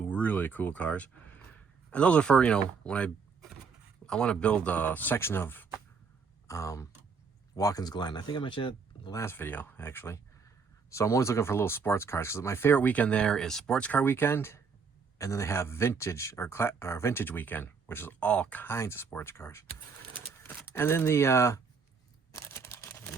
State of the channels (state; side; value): quieter; left; 5.4 dB